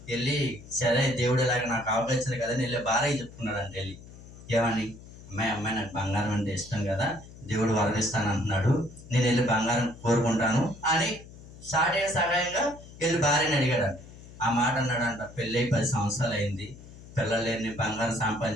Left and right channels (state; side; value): noise; left; hum, 18 dB below the sound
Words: వెళ్ళి సరే దేవుడు ఇలాగ నాకు అవకాశం కదని వెళ్ళి భార్య చెప్పుకున్నాడంట. వెళ్ళి ఏమని, అమ్మాయి నాకు బంగారం అంటే ఇష్టం కదా, దేవుడు వరమిస్తాను అంటున్నాడు, నేను వెళ్ళి బంగారం కోరుకుంటాను అని సాటే సహాయంగా వెళ్ళి భార్యని అడిగాడంట. ఆ మాట అన్నాడంట, పెళ్ళై 10 సంవత్సరాలు అయింది, పిల్లలు లేని బంగారం